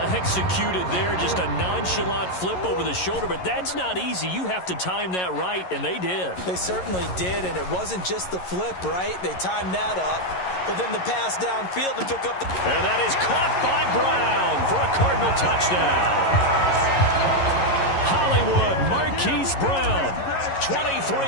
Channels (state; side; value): late; right; 11 ms